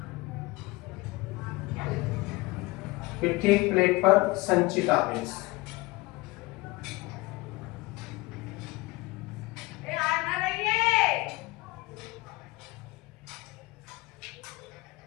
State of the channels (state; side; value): quieter; right; 22.1 dB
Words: प्रत्येक प्लेट पर संचित आवेश।